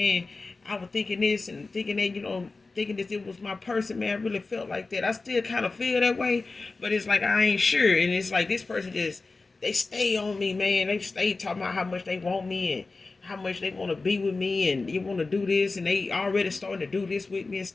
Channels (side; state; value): right; quieter; 3.7 dB